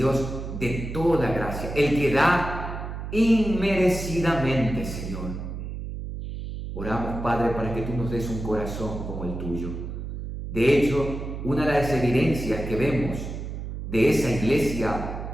de toda gracia, el que da inmerecidamente, Señor. Oramos, Padre, para que tú nos des un corazón como el tuyo. De hecho, una de las evidencias que vemos de esa iglesia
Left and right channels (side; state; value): right; noise; hum, 7 dB below the sound